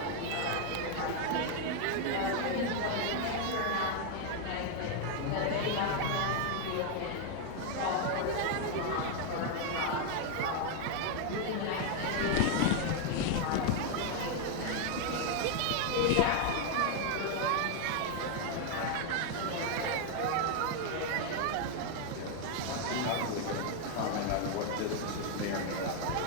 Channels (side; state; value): both; different; correlation 0.00